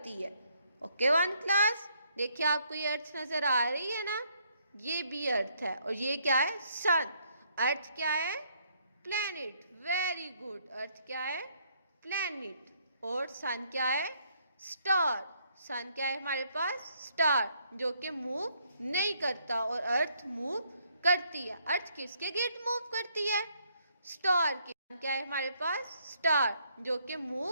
है। ओके वन क्लास, देखिए आपको ये अर्थ नजर आ रही है ना, ये भी अर्थ है और ये क्या है? सन। अर्थ क्या है? प्लेनेट। Very good. अर्थ क्या है? प्लेनेट। और सन क्या है? स्टार। सन क्या है हमारे पास? स्टार, जो कि मूव नहीं करता और अर्थ मूव करती है। अर्थ किसके गिर्द मूव करती है? स्टार के। क्या है हमारे पास? स्टार, जो कि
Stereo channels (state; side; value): inverted; both; correlation -0.69